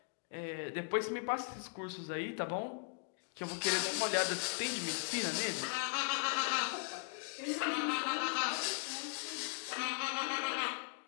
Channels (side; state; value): right; quieter; 35.5 dB